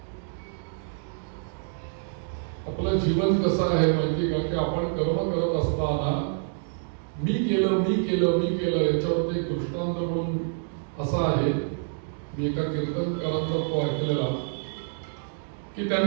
आपलं जीवन कसं आहे माहिती का, की आपण कर्म करत असताना मी केलं मी केलं मी केलं याच्यावर एक दृष्टांत म्हणून असा आहे. मी एका कीर्तनकारांचा तो ऐकलेला की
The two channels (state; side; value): silent; left; digital silence